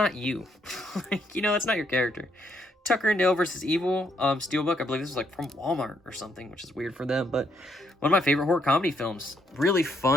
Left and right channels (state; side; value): normal; both; correlation 0.73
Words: you. Like, you know, that's not your character. Tucker and Dale versus Evil, Steelbook, I believe this was like from Walmart or something, which is weird for them, but one of my favorite horror comedy films. Really